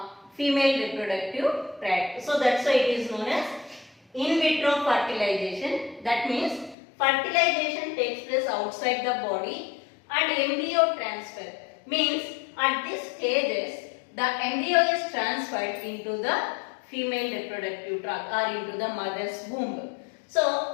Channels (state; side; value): drops out; right; at 6.8 s